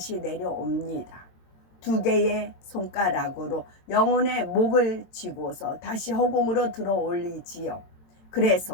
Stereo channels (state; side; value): late; right; 22 ms